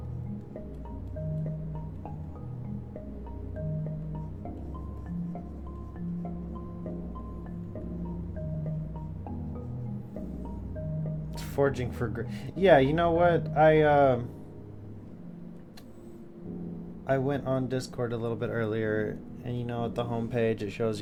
Forging for yeah, you know what? I went on Discord a little bit earlier, and you know at the homepage it shows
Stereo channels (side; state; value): both; identical; correlation 1.00